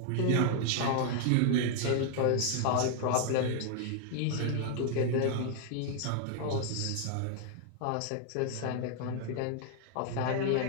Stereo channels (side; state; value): both; different; correlation 0.00